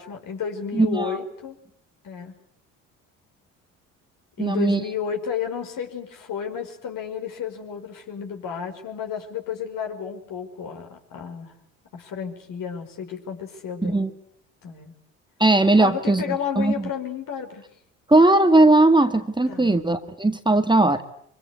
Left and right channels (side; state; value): both; normal; correlation 0.66